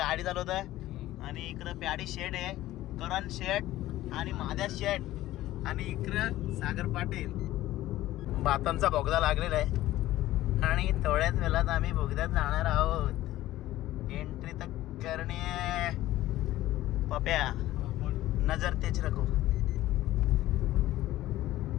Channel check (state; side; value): quieter; right; 15.4 dB